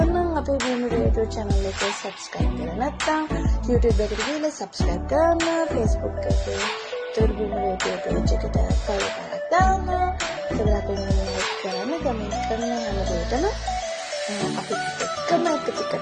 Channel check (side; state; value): both; identical; correlation 1.00